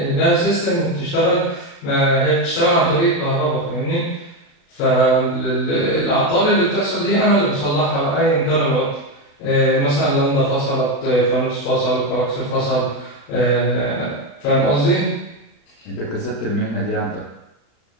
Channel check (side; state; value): right; late; 35 ms